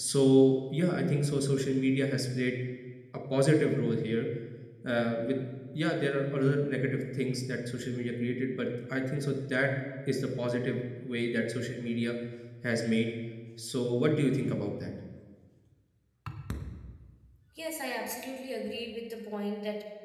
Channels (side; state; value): both; identical; correlation 1.00